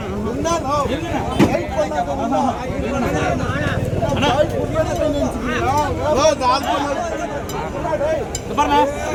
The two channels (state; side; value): identical; both; correlation 1.00